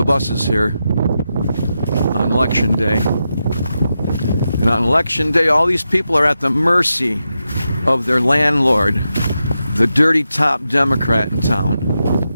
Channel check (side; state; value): both; inverted; correlation -0.88